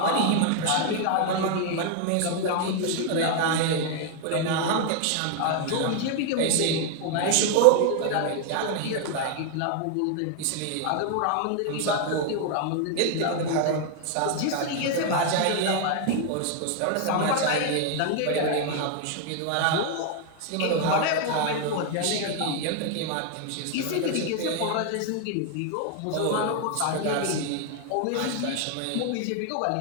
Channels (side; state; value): both; different; correlation 0.00